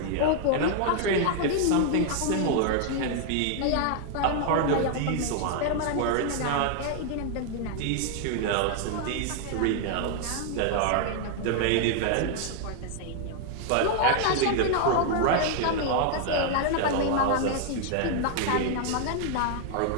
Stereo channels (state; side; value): different; both; correlation 0.00